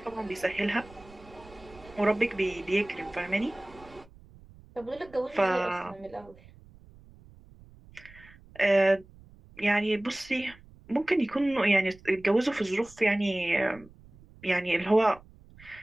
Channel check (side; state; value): right; noise; rumble, 23 dB below the sound